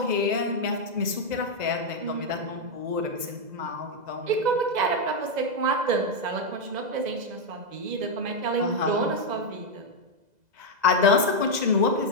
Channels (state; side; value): late; left; 2.0 ms